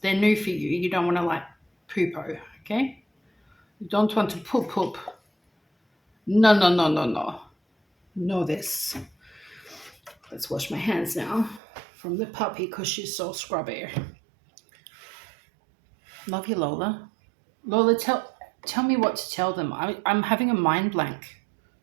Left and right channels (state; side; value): drops out; left; at 11.6 s